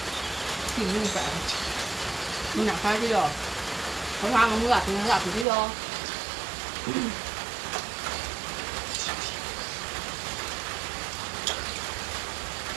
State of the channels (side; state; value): left; drops out; at 5.5 s